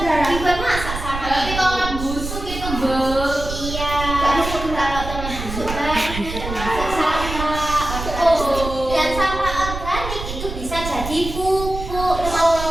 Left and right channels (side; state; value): right; noise; rumble, 7 dB below the sound